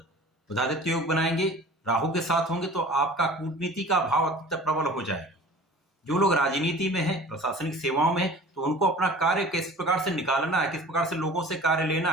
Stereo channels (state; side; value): normal; both; correlation 0.43